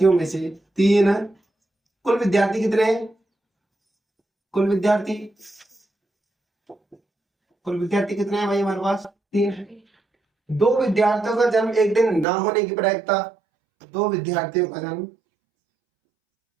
में से 3, कुल विद्यार्थी कितने हैं, कुल विद्यार्थी कितने हैं भाई हमारे पास, 3 है। 2 विद्यार्थियों का जन्म एक दिन ना होने की प्रायिकता, 2 विद्यार्थियों का जन्म,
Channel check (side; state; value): left; drops out; at 12.2 s